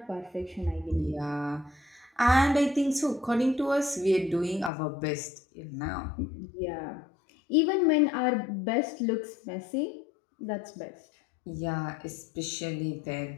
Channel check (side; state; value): right; drops out; at 4.7 s